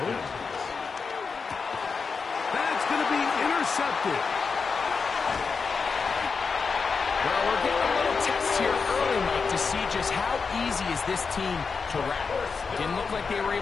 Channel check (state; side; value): quieter; right; 5.1 dB